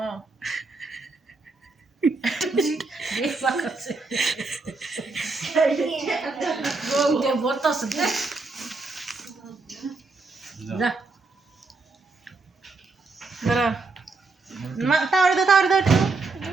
দেখবা কাছে গো বর্তাস দে যা দাঁড়া তাওয়ারে দাও একটু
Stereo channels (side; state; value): left; quieter; 3.7 dB